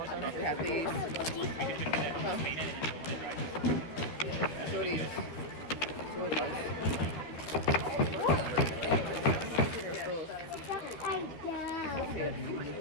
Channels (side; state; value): right; late; 13 ms